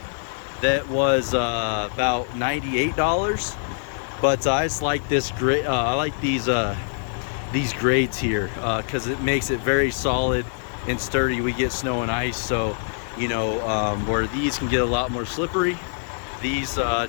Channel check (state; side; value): silent; right; 63 dB below the other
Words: that was about $98, but I just like this great. I like these grades here because it makes it very solid and sturdy. We get snow and ice, so you know, where these can get a lot more slippery, these